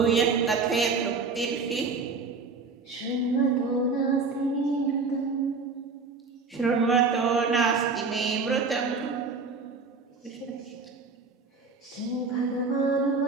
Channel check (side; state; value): left; quieter; 4.4 dB